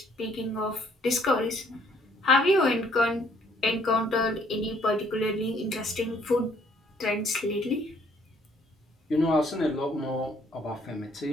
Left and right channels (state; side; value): normal; both; correlation 0.64